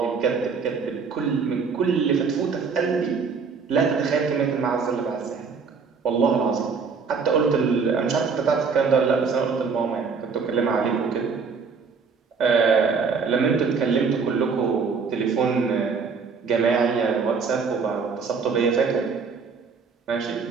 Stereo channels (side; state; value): left; quieter; 5.3 dB